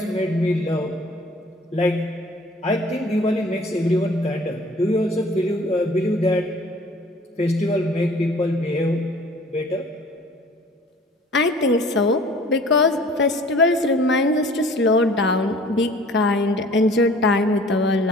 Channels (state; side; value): normal; both; correlation 0.50